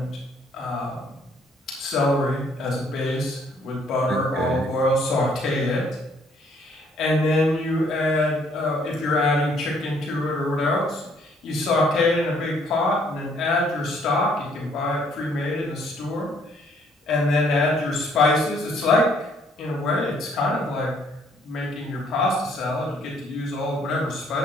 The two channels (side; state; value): both; normal; correlation 0.64